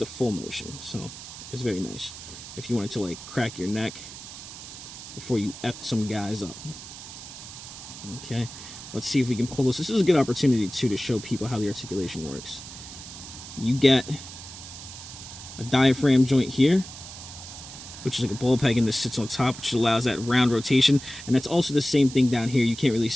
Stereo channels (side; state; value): right; noise; hiss, 13 dB below the sound